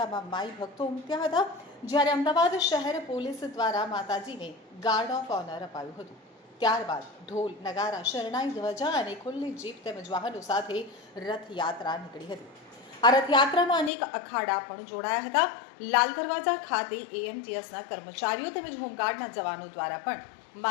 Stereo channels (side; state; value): right; drops out; at 13.9 s